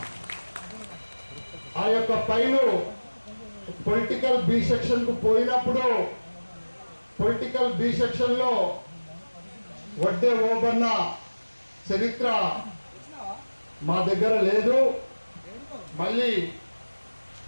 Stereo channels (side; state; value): both; inverted; correlation -1.00